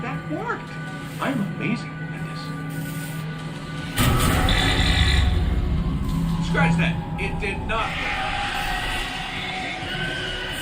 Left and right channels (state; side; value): identical; both; correlation 1.00